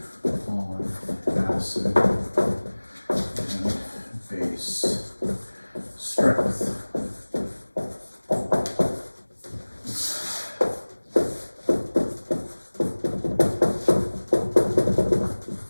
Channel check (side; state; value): both; inverted; correlation -1.00